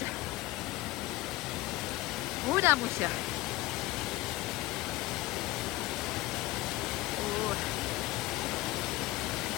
Uda mu się.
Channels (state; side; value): quieter; right; 18.3 dB